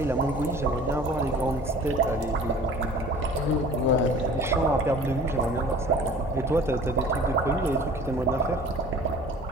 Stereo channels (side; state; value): both; normal; correlation 0.45